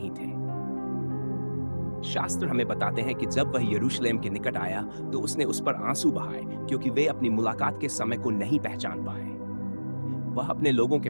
थे। शास्त्र हमें बताते हैं कि जब वह यरूशलेम के निकट आया तो उसने उस पर आंसू बहाए, क्योंकि वे अपनी मुलाकात के समय को नहीं पहचान पाए। वह अपने लोगों के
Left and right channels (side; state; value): both; inverted; correlation -1.00